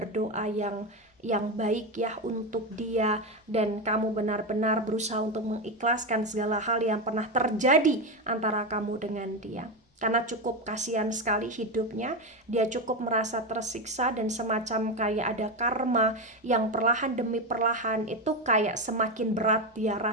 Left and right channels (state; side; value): normal; both; correlation 0.13